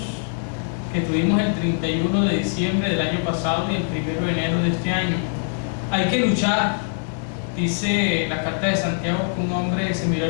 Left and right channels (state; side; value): silent; right; digital silence